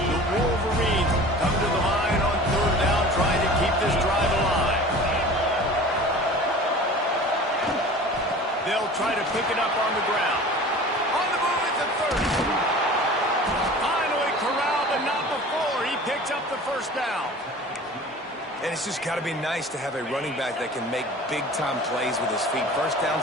Wolverines come to the line on third down, trying to keep this drive alive. They'll try to pick it up on the ground. On the move at the 30. Finally corralled, but not before. He picks up the first down. And it's just got to be nice to have a running back that can make big-time plays with his feet. First down,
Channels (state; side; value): normal; both; correlation 0.41